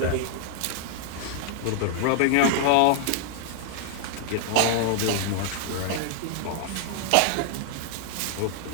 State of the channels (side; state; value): both; different; correlation -0.01